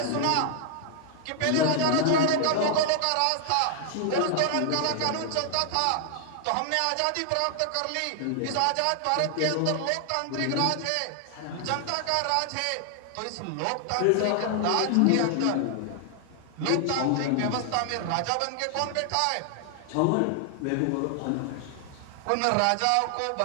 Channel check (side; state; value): both; different; correlation 0.00